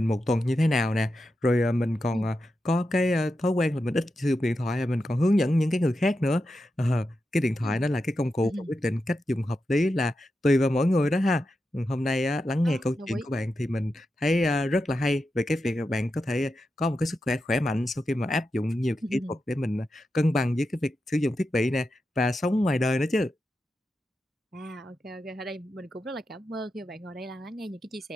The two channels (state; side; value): normal; both; correlation 0.89